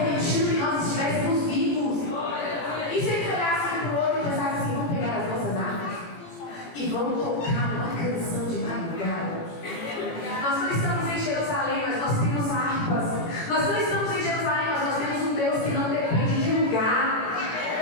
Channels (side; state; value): right; late; 18 ms